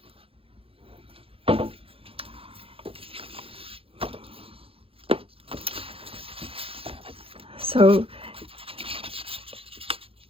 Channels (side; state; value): left; late; 0.27 ms